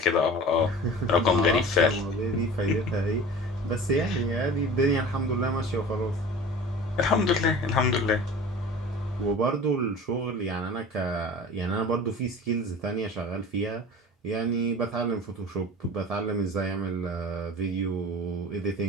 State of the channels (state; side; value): normal; both; correlation 0.39